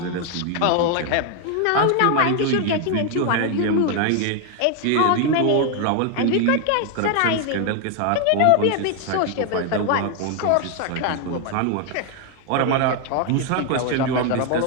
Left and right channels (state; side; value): different; both; correlation 0.01